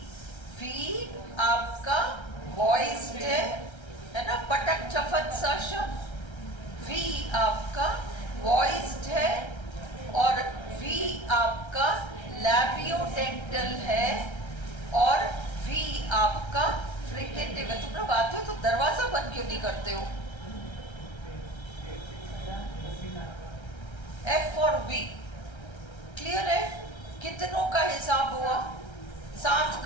वी आपका वॉइस्ड है ना, पटक चफत सा शब्द। वी आपका वॉइस्ड है और वी आपका लैबियोडेंटल है और वी आपका फ्रिकेटिव है। तुम लोग आते हो तो दरवाजा बंद क्यों नहीं करते हो? F और V। क्लियर है? कितनों का हिसाब हुआ? 7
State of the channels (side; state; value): right; late; 1.3 ms